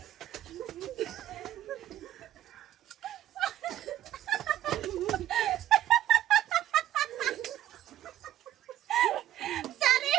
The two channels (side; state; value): left; quieter; 12.7 dB